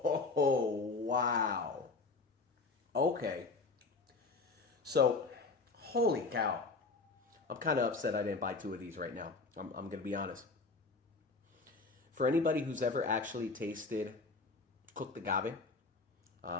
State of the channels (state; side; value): quieter; right; 3.9 dB